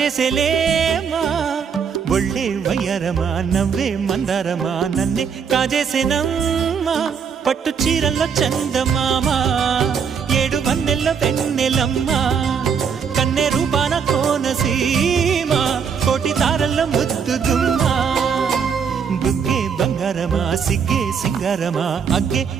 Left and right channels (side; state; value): left; quieter; 6.7 dB